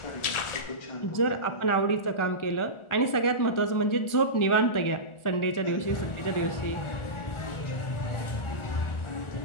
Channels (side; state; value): right; late; 1.4 ms